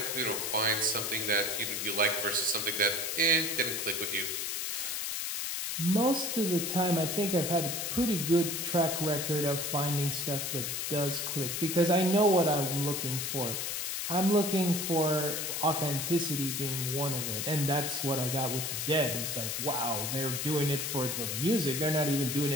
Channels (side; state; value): left; noise; hiss, 2 dB below the sound